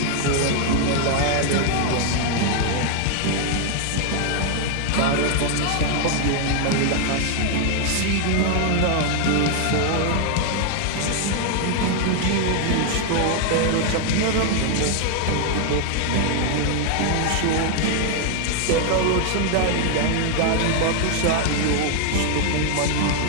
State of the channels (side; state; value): both; different; correlation 0.00